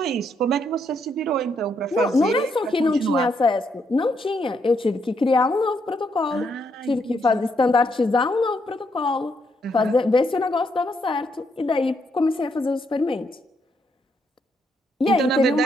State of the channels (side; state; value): both; normal; correlation 0.76